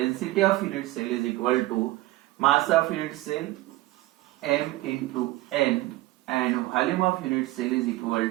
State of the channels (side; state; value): left; quieter; 18.1 dB